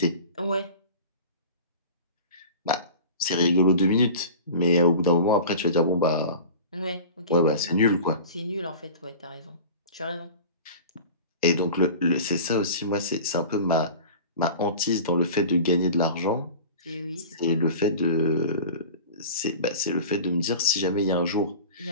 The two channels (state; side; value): inverted; both; correlation -0.37